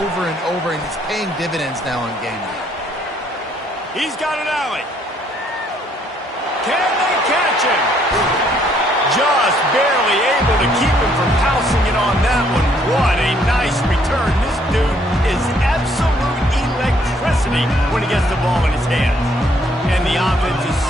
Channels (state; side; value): normal; both; correlation 0.67